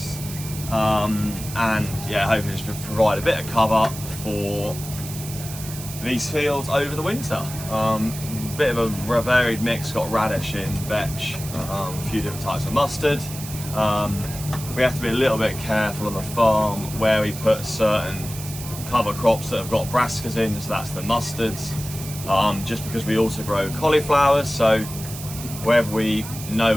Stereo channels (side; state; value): right; noise; hiss, 11 dB below the sound